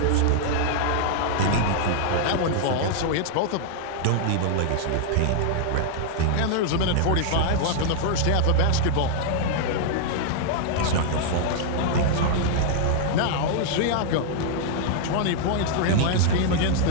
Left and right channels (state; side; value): different; both; correlation -0.01